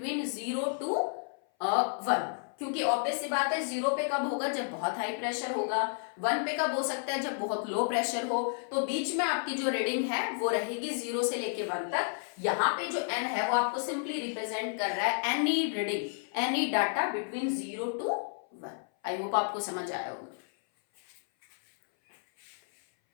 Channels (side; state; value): right; silent; 57 dB below the other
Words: 0 to 1, क्योंकि ऑब्वियस सी बात है 0 पे कब होगा जब बहुत हाई प्रेशर होगा, 1 पे कब हो सकता है जब बहुत लो प्रेशर हो, तो बीच में आपकी जो रीडिंग है वो रहेगी 0 से लेके 1 तक। यहाँ पे जो n है वो आपको सिंपली रिप्रेजेंट कर रहा है any reading, any data between 0 to 1। I hope आपको समझ आया होगा।